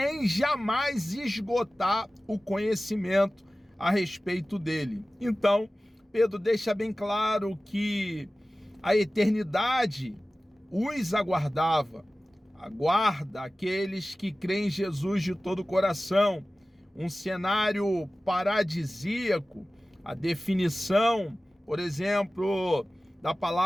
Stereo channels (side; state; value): both; normal; correlation 0.97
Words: jamais esgotar o conhecimento a respeito dele. Então, Pedro deixa bem claro que a eternidade os aguardava, aguarda aqueles que creem em Jesus de todo o coração. Um cenário paradisíaco. A definição, por exemplo, da